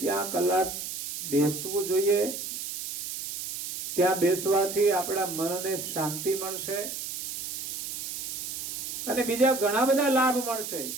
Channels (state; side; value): noise; right; hiss, 6 dB below the sound